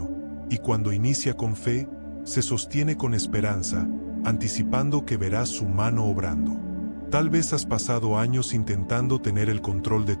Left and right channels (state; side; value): inverted; both; correlation -1.00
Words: y cuando inicia con fe, se sostiene con esperanza, anticipando que verás su mano obrando. Tal vez has pasado años intentando tener el control de